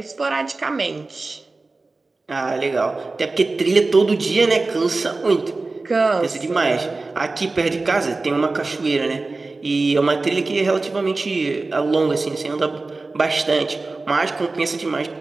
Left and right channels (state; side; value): quieter; left; 3.5 dB